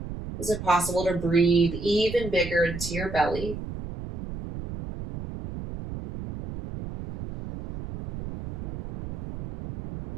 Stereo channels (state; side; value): noise; right; rumble, 9 dB below the sound